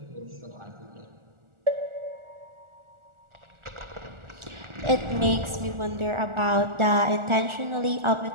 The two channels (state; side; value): late; left; 1.4 ms